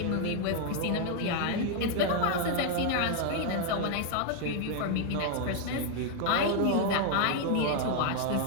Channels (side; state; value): both; different; correlation 0.00